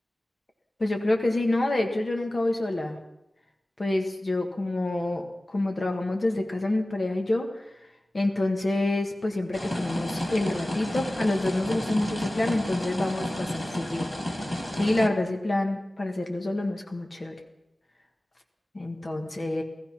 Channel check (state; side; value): normal; both; correlation 0.97